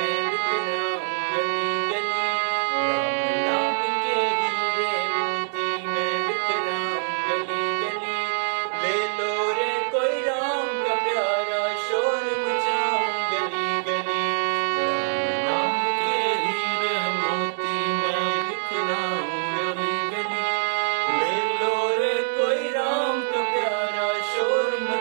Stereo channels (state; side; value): silent; left; 62 dB below the other